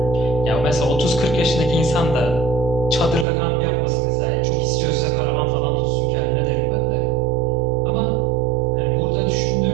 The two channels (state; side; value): drops out; left; at 3.2 s